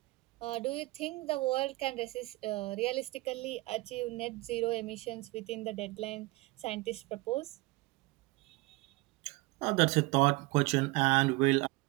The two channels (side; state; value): left; quieter; 22.2 dB